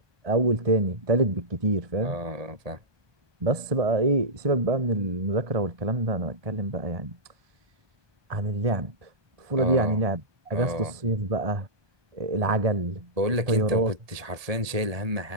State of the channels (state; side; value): late; left; 1.7 ms